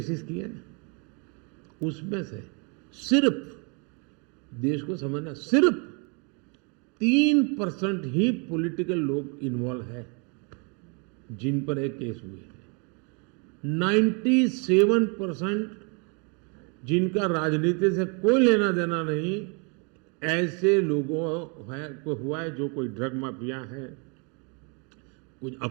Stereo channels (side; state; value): left; quieter; 35.1 dB